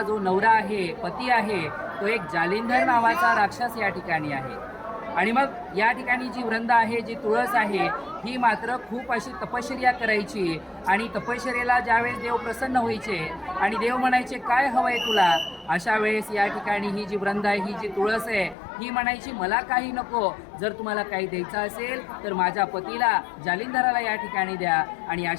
जो नवरा आहे, पती आहे, तो एक जालिंधर नावाचा राक्षस या ठिकाणी आहे. आणि मग या ठिकाणी जी वृंदा आहे, जी तुळस आहे, ही मात्र खूप अशी तपश्चर्या करायची आणि तपश्चर्येला ज्यावेळेस देव प्रसन्न व्हायचे आणि देव म्हणायचे काय हवंय तुला, अशा वेळेस या ठिकाणी ही जी वृंदा आहे, ही जी तुळस आहे, ही म्हणायची मला काही नको, जर तुम्हाला काही द्यायचं असेल तर माझ्या पतीला जालिंधराला या ठिकाणी द्या. आणि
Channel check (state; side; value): drops out; right; at 18.6 s